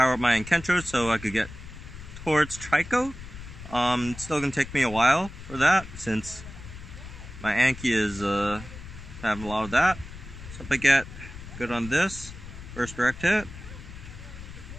up my Kencho so I could get towards Trico. It's still gonna take me a while for that since my Anki is having a lot of that. So if I get good on this, first direct hit,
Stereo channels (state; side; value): noise; left; rumble, 13 dB below the sound